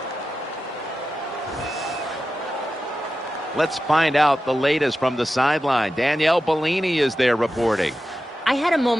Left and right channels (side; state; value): both; normal; correlation 0.92